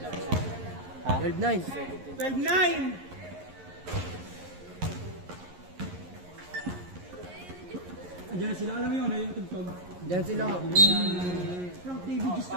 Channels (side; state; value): left; late; 11 ms